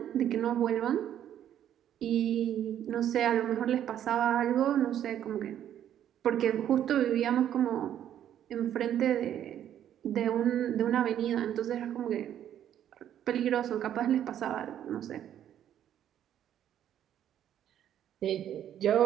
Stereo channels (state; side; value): quieter; left; 10.6 dB